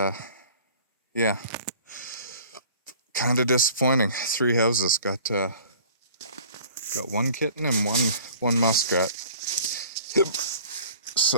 yeah, kind of disappointing. 3 houses got one kitten and one muskrat.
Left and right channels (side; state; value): both; inverted; correlation -0.48